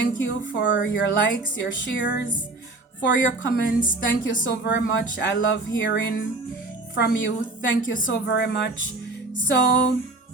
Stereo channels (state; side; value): quieter; left; 3.2 dB